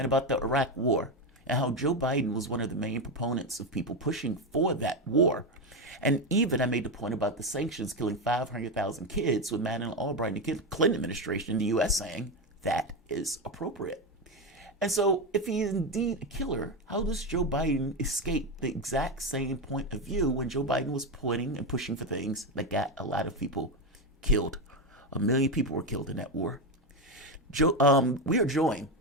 about the Iraq war and how Joe Biden was one of the main proponents of people pushing for that war. And even I made the point about the sanctions killing 500,000 kids with Madeleine Albright and the Clinton administration in the U.S. saying that is appropriate. And so if he is indeed a killer, how does Joe Biden escape the exact same point of view when Joe Biden was pointing and pushing for things that got a lot of people killed? 1 million people were killed in that war. We are joined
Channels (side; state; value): both; normal; correlation 0.12